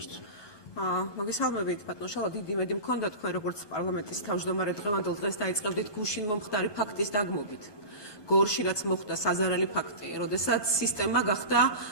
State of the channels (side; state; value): right; late; 1.2 ms